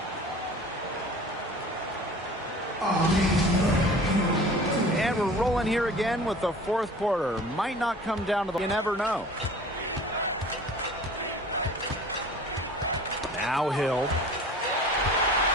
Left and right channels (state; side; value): normal; both; correlation 0.43